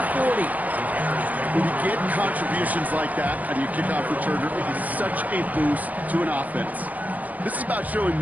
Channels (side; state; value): left; late; 0.078 ms